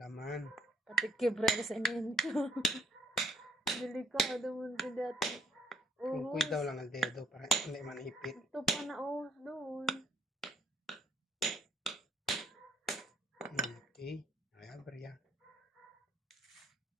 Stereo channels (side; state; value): both; normal; correlation 0.68